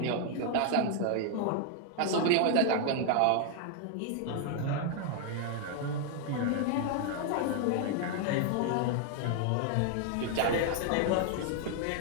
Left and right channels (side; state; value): both; different; correlation 0.00